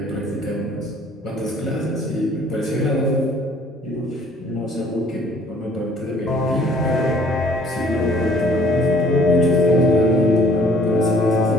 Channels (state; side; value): normal; both; correlation 0.57